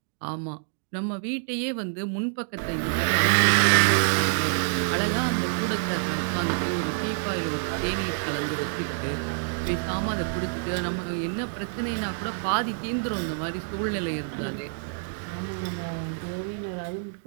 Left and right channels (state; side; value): silent; left; digital silence